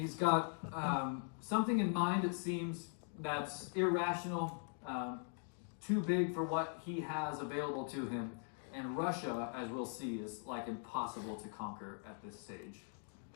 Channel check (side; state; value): right; silent; 50 dB below the other